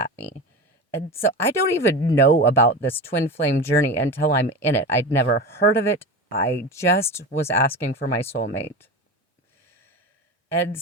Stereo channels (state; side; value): normal; both; correlation 0.26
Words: me. And so I don't even know about this twin flame journey until I'm in it. I'd never heard of it. I just was asking for my soulmate. And